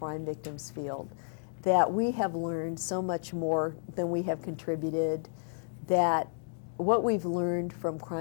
victims field, that we have learned so much more than we have contributed, that what we've learned from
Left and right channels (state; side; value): silent; right; digital silence